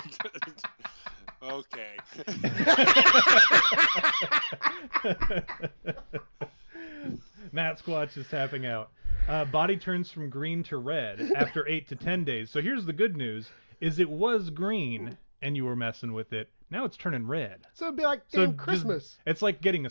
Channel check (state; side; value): inverted; both; correlation -1.00